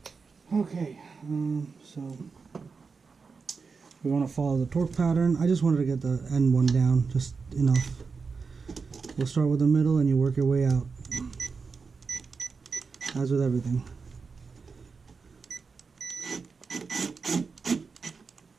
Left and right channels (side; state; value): left; quieter; 5.0 dB